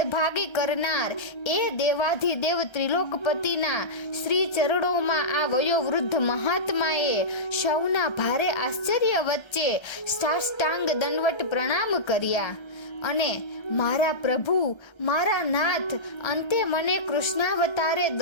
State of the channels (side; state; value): right; late; 1.3 ms